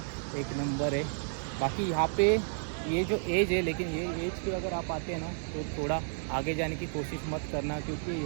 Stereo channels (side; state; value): left; silent; 57 dB below the other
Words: एक नंबर है। बाकी यहाँ पे ये जो एज है, लेकिन ये एज पे अगर आप आते हैं ना तो थोड़ा आगे जाने की कोशिश मत करना, क्योंकि